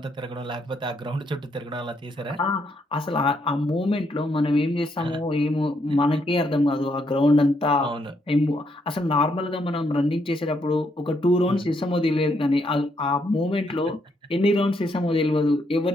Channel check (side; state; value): both; normal; correlation 0.75